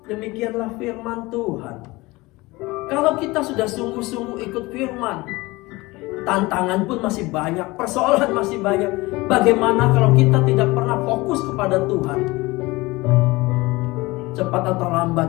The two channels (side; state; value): right; quieter; 21.6 dB